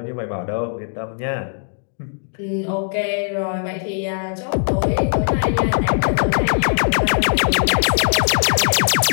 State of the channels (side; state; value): right; silent; 66 dB below the other